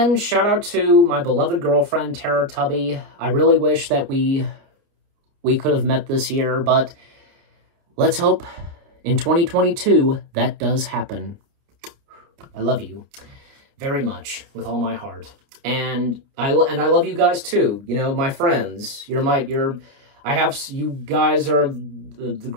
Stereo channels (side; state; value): left; late; 29 ms